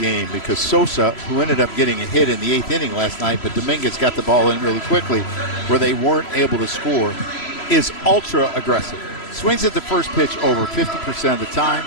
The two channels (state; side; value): late; right; 3.0 ms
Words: because Sosa, who ended up getting a hit in the 8th inning last night, but Dominguez got the ball in really quickly where they weren't able to score, is ultra aggressive. Swings at the first pitch over 50% of the time.